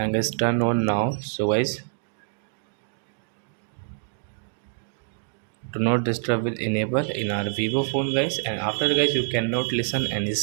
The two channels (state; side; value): silent; left; 61 dB below the other